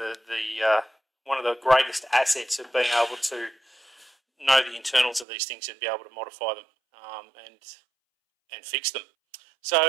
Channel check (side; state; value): left; drops out; at 5.2 s